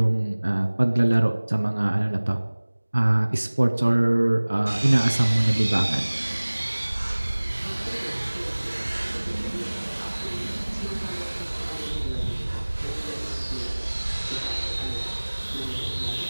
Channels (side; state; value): both; inverted; correlation -1.00